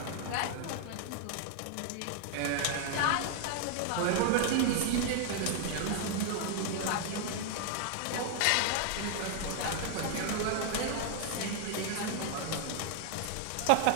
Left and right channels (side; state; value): both; different; correlation 0.00